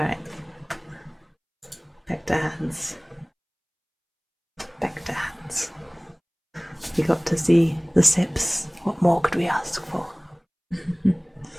Back to hands. Back to hands. We got to see the sips. What more could we ask for?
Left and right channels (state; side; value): identical; both; correlation 1.00